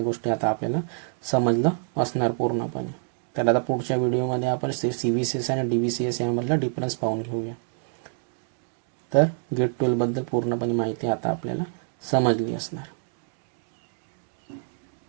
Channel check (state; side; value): silent; left; 59 dB below the other